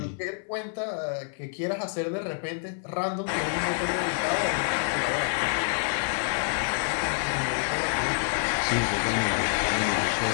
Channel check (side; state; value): right; silent; 57 dB below the other